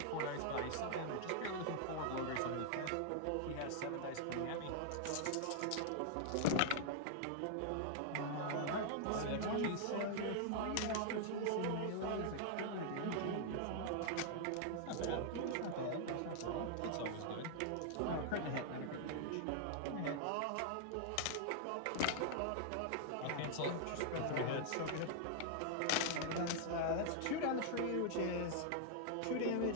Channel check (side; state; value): both; different; correlation -0.01